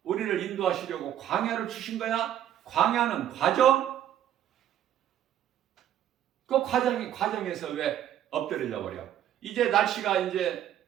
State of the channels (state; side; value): quieter; left; 11.1 dB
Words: 우리를 인도하시려고 광야를 주신 거야. 광야는 과정. 그 과정에서 왜 엎드려 버려? 이제 날씨가 이제